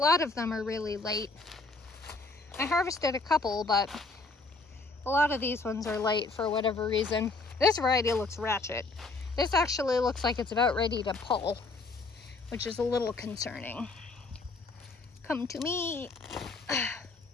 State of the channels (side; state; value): right; quieter; 3.7 dB